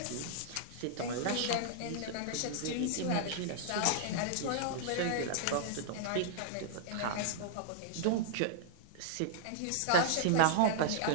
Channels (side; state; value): both; different; correlation -0.01